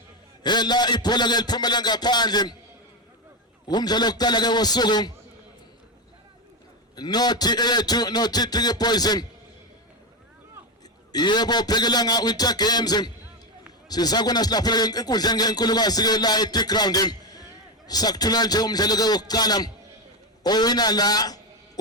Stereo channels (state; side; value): normal; both; correlation 0.11